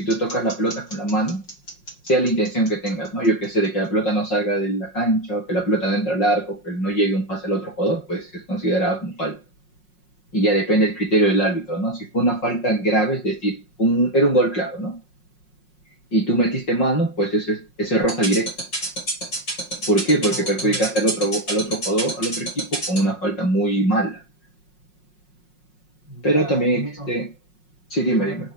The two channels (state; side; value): late; right; 5.5 ms